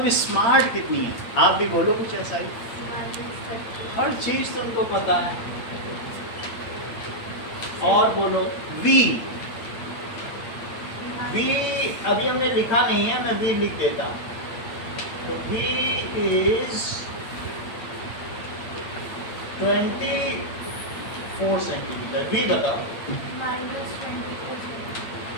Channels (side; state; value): right; late; 8.8 ms